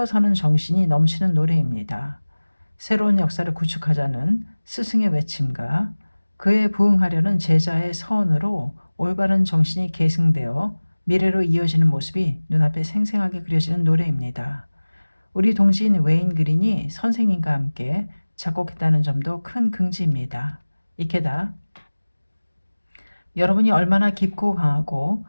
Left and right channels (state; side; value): inverted; both; correlation -1.00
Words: 서는 정신이 넘치는 노래입니다. 새로운 역사를 구축하자는 스승의 외침과 그에 부응하려는 제자의 서원으로 올바른 정신이 계승되어 미래로 이어지는 모습이 눈앞에 생생하게 그려지는 노래입니다. 우리 동지인 웨인 그린이 선생님과 함께 작곡했다는 점도 큰 긍지입니다. 이케다 여러분이 얼마나 깊고 강하고